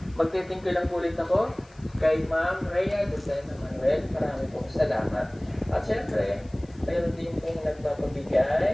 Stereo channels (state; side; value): noise; left; hiss, 30 dB below the sound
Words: Magte-thank you lang po ulit ako kay Ma'am Rhea Lucena Manuel. Marami pong salamat. At syempre, mayroon din pong